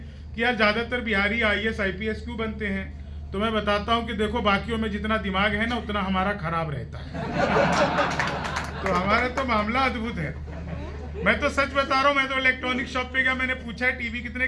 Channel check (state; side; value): identical; both; correlation 1.00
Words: कि यार ज़्यादातर बिहारी आईएएस आईपीएस क्यों बनते हैं। तो मैं बताता हूँ कि देखो, बाकियों में जितना दिमाग है ना उतना हमारा खराब रहता है। तो हमारा तो मामला अद्भुत है। मैं तो सच बता रहा हूँ, मैं तो इलेक्ट्रॉनिक शॉप पे गया, मैंने पूछा है टीवी कितने